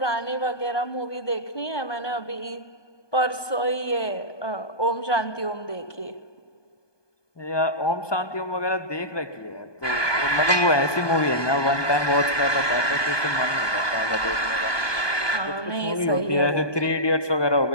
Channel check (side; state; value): right; late; 1.2 ms